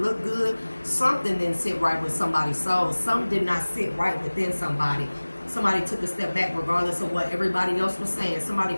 good, something didn't sit right with somebody's soul. Something did not sit right within somebody. Somebody took a step back regardless of what everybody else was saying. Somebody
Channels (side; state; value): both; inverted; correlation -1.00